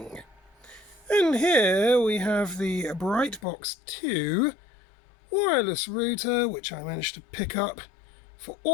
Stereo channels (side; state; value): right; drops out; at 3.4 s